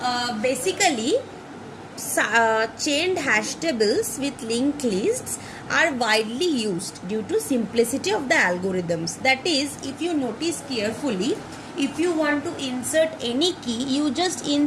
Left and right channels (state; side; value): identical; both; correlation 1.00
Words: basically chained hash tables with linked lists are widely used due to simplicity of the algorithms. That is, if you notice carefully, if you want to insert any key, you just